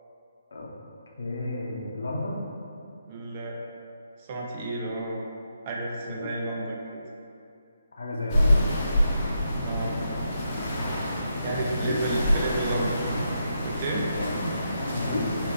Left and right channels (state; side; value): inverted; both; correlation -0.81